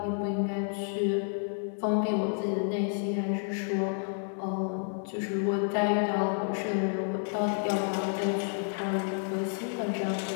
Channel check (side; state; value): right; silent; 58 dB below the other